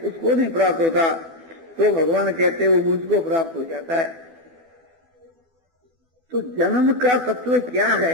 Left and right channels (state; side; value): late; left; 12 ms